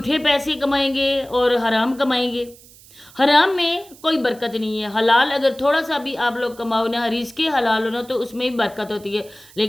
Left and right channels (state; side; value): noise; right; hiss, 23 dB below the sound